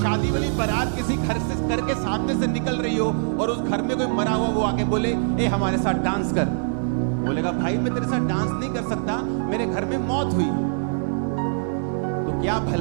वाली बारात किसी घर के सामने से निकल रही हो और उस घर में कोई मरा हुआ, वो आके बोले ए हमारे साथ डांस कर। बोलेगा भाई मैं तेरे साथ डांस नहीं कर सकता, मेरे घर में मौत हुई। तो क्या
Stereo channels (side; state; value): left; silent; digital silence